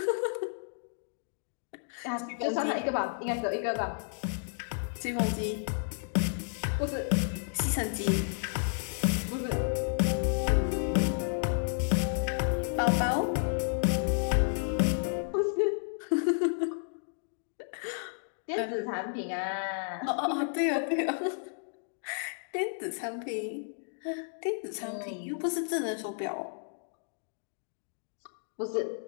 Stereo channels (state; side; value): silent; right; digital silence